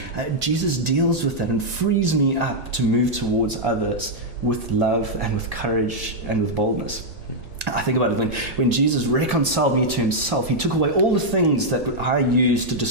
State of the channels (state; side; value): normal; both; correlation -0.05